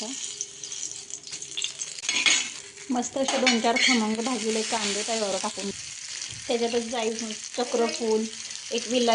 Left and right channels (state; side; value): identical; both; correlation 1.00